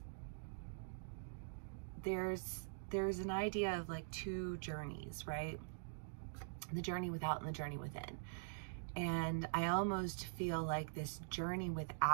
there's an idea of like two journeys, right? The journey without and the journey within. And I almost feel like this journey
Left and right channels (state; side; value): silent; left; digital silence